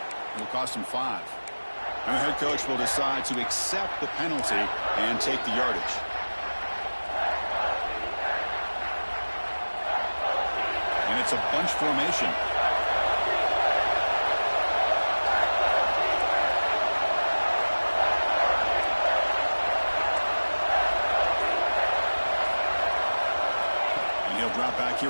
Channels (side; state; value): both; inverted; correlation -1.00